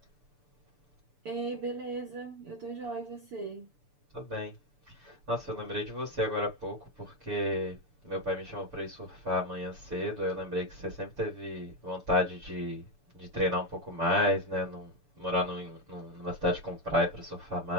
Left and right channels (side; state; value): left; late; 6.9 ms